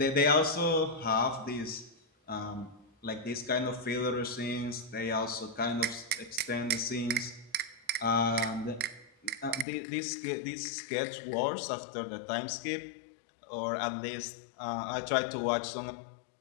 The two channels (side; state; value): right; drops out; at 9.7 s